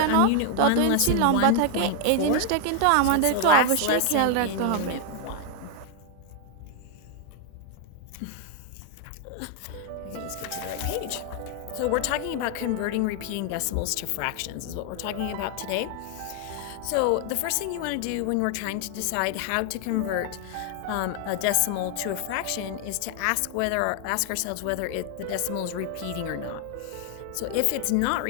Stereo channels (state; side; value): different; both; correlation 0.00